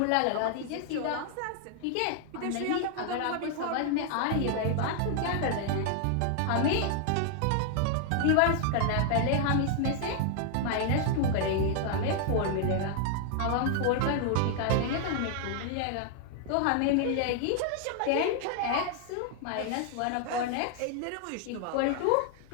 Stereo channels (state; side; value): different; both; correlation 0.00